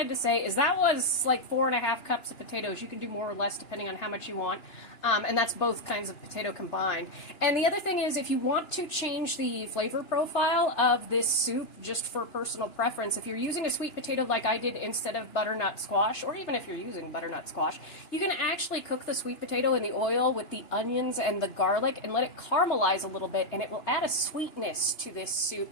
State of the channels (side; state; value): right; late; 2.9 ms